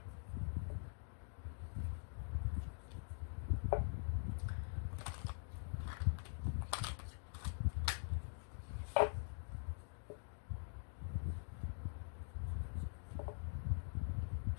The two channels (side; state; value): right; silent; digital silence